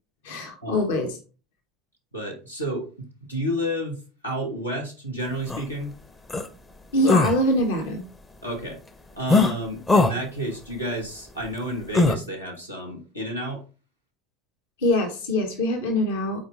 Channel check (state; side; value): normal; both; correlation 0.34